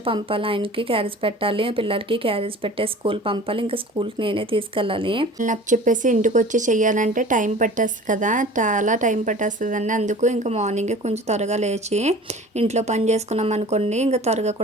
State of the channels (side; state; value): both; normal; correlation 0.43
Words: పంపాలి. ఆయనకి క్యారేజ్ పెట్టాలి, పిల్లలకి క్యారేజ్ పెట్టే స్కూల్ పంపాలి, ఇంకా స్కూల్కి నేనే తీసుకెళ్ళాలి. నాకు చెప్పేసి ఇంటికి వచ్చి చెయ్యాలంటే టైం పట్టేస్తుంది కదా, చాలా టైం పట్టేస్తుందండి. అందుకు ఇంకా మార్నింగే కొంచెం త్వరగా లేచి ఇంట్లో పని చేసుకున్నాం అనుకోండి, ఇంకా త్వరగా